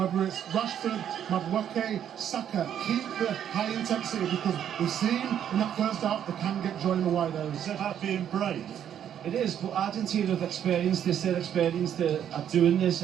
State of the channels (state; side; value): quieter; left; 9.6 dB